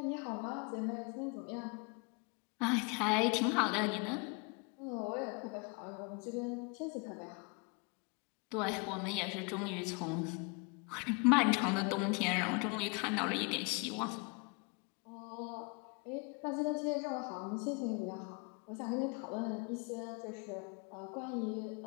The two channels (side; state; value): right; quieter; 31.6 dB